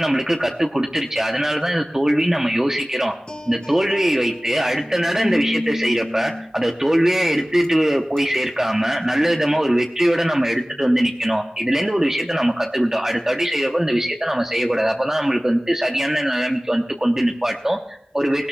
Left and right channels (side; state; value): both; normal; correlation 0.98